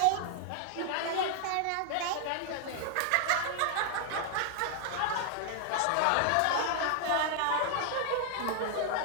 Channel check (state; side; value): different; both; correlation 0.00